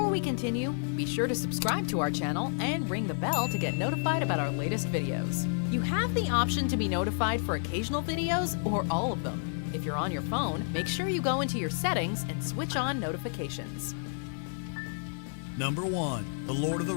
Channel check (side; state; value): right; silent; 58 dB below the other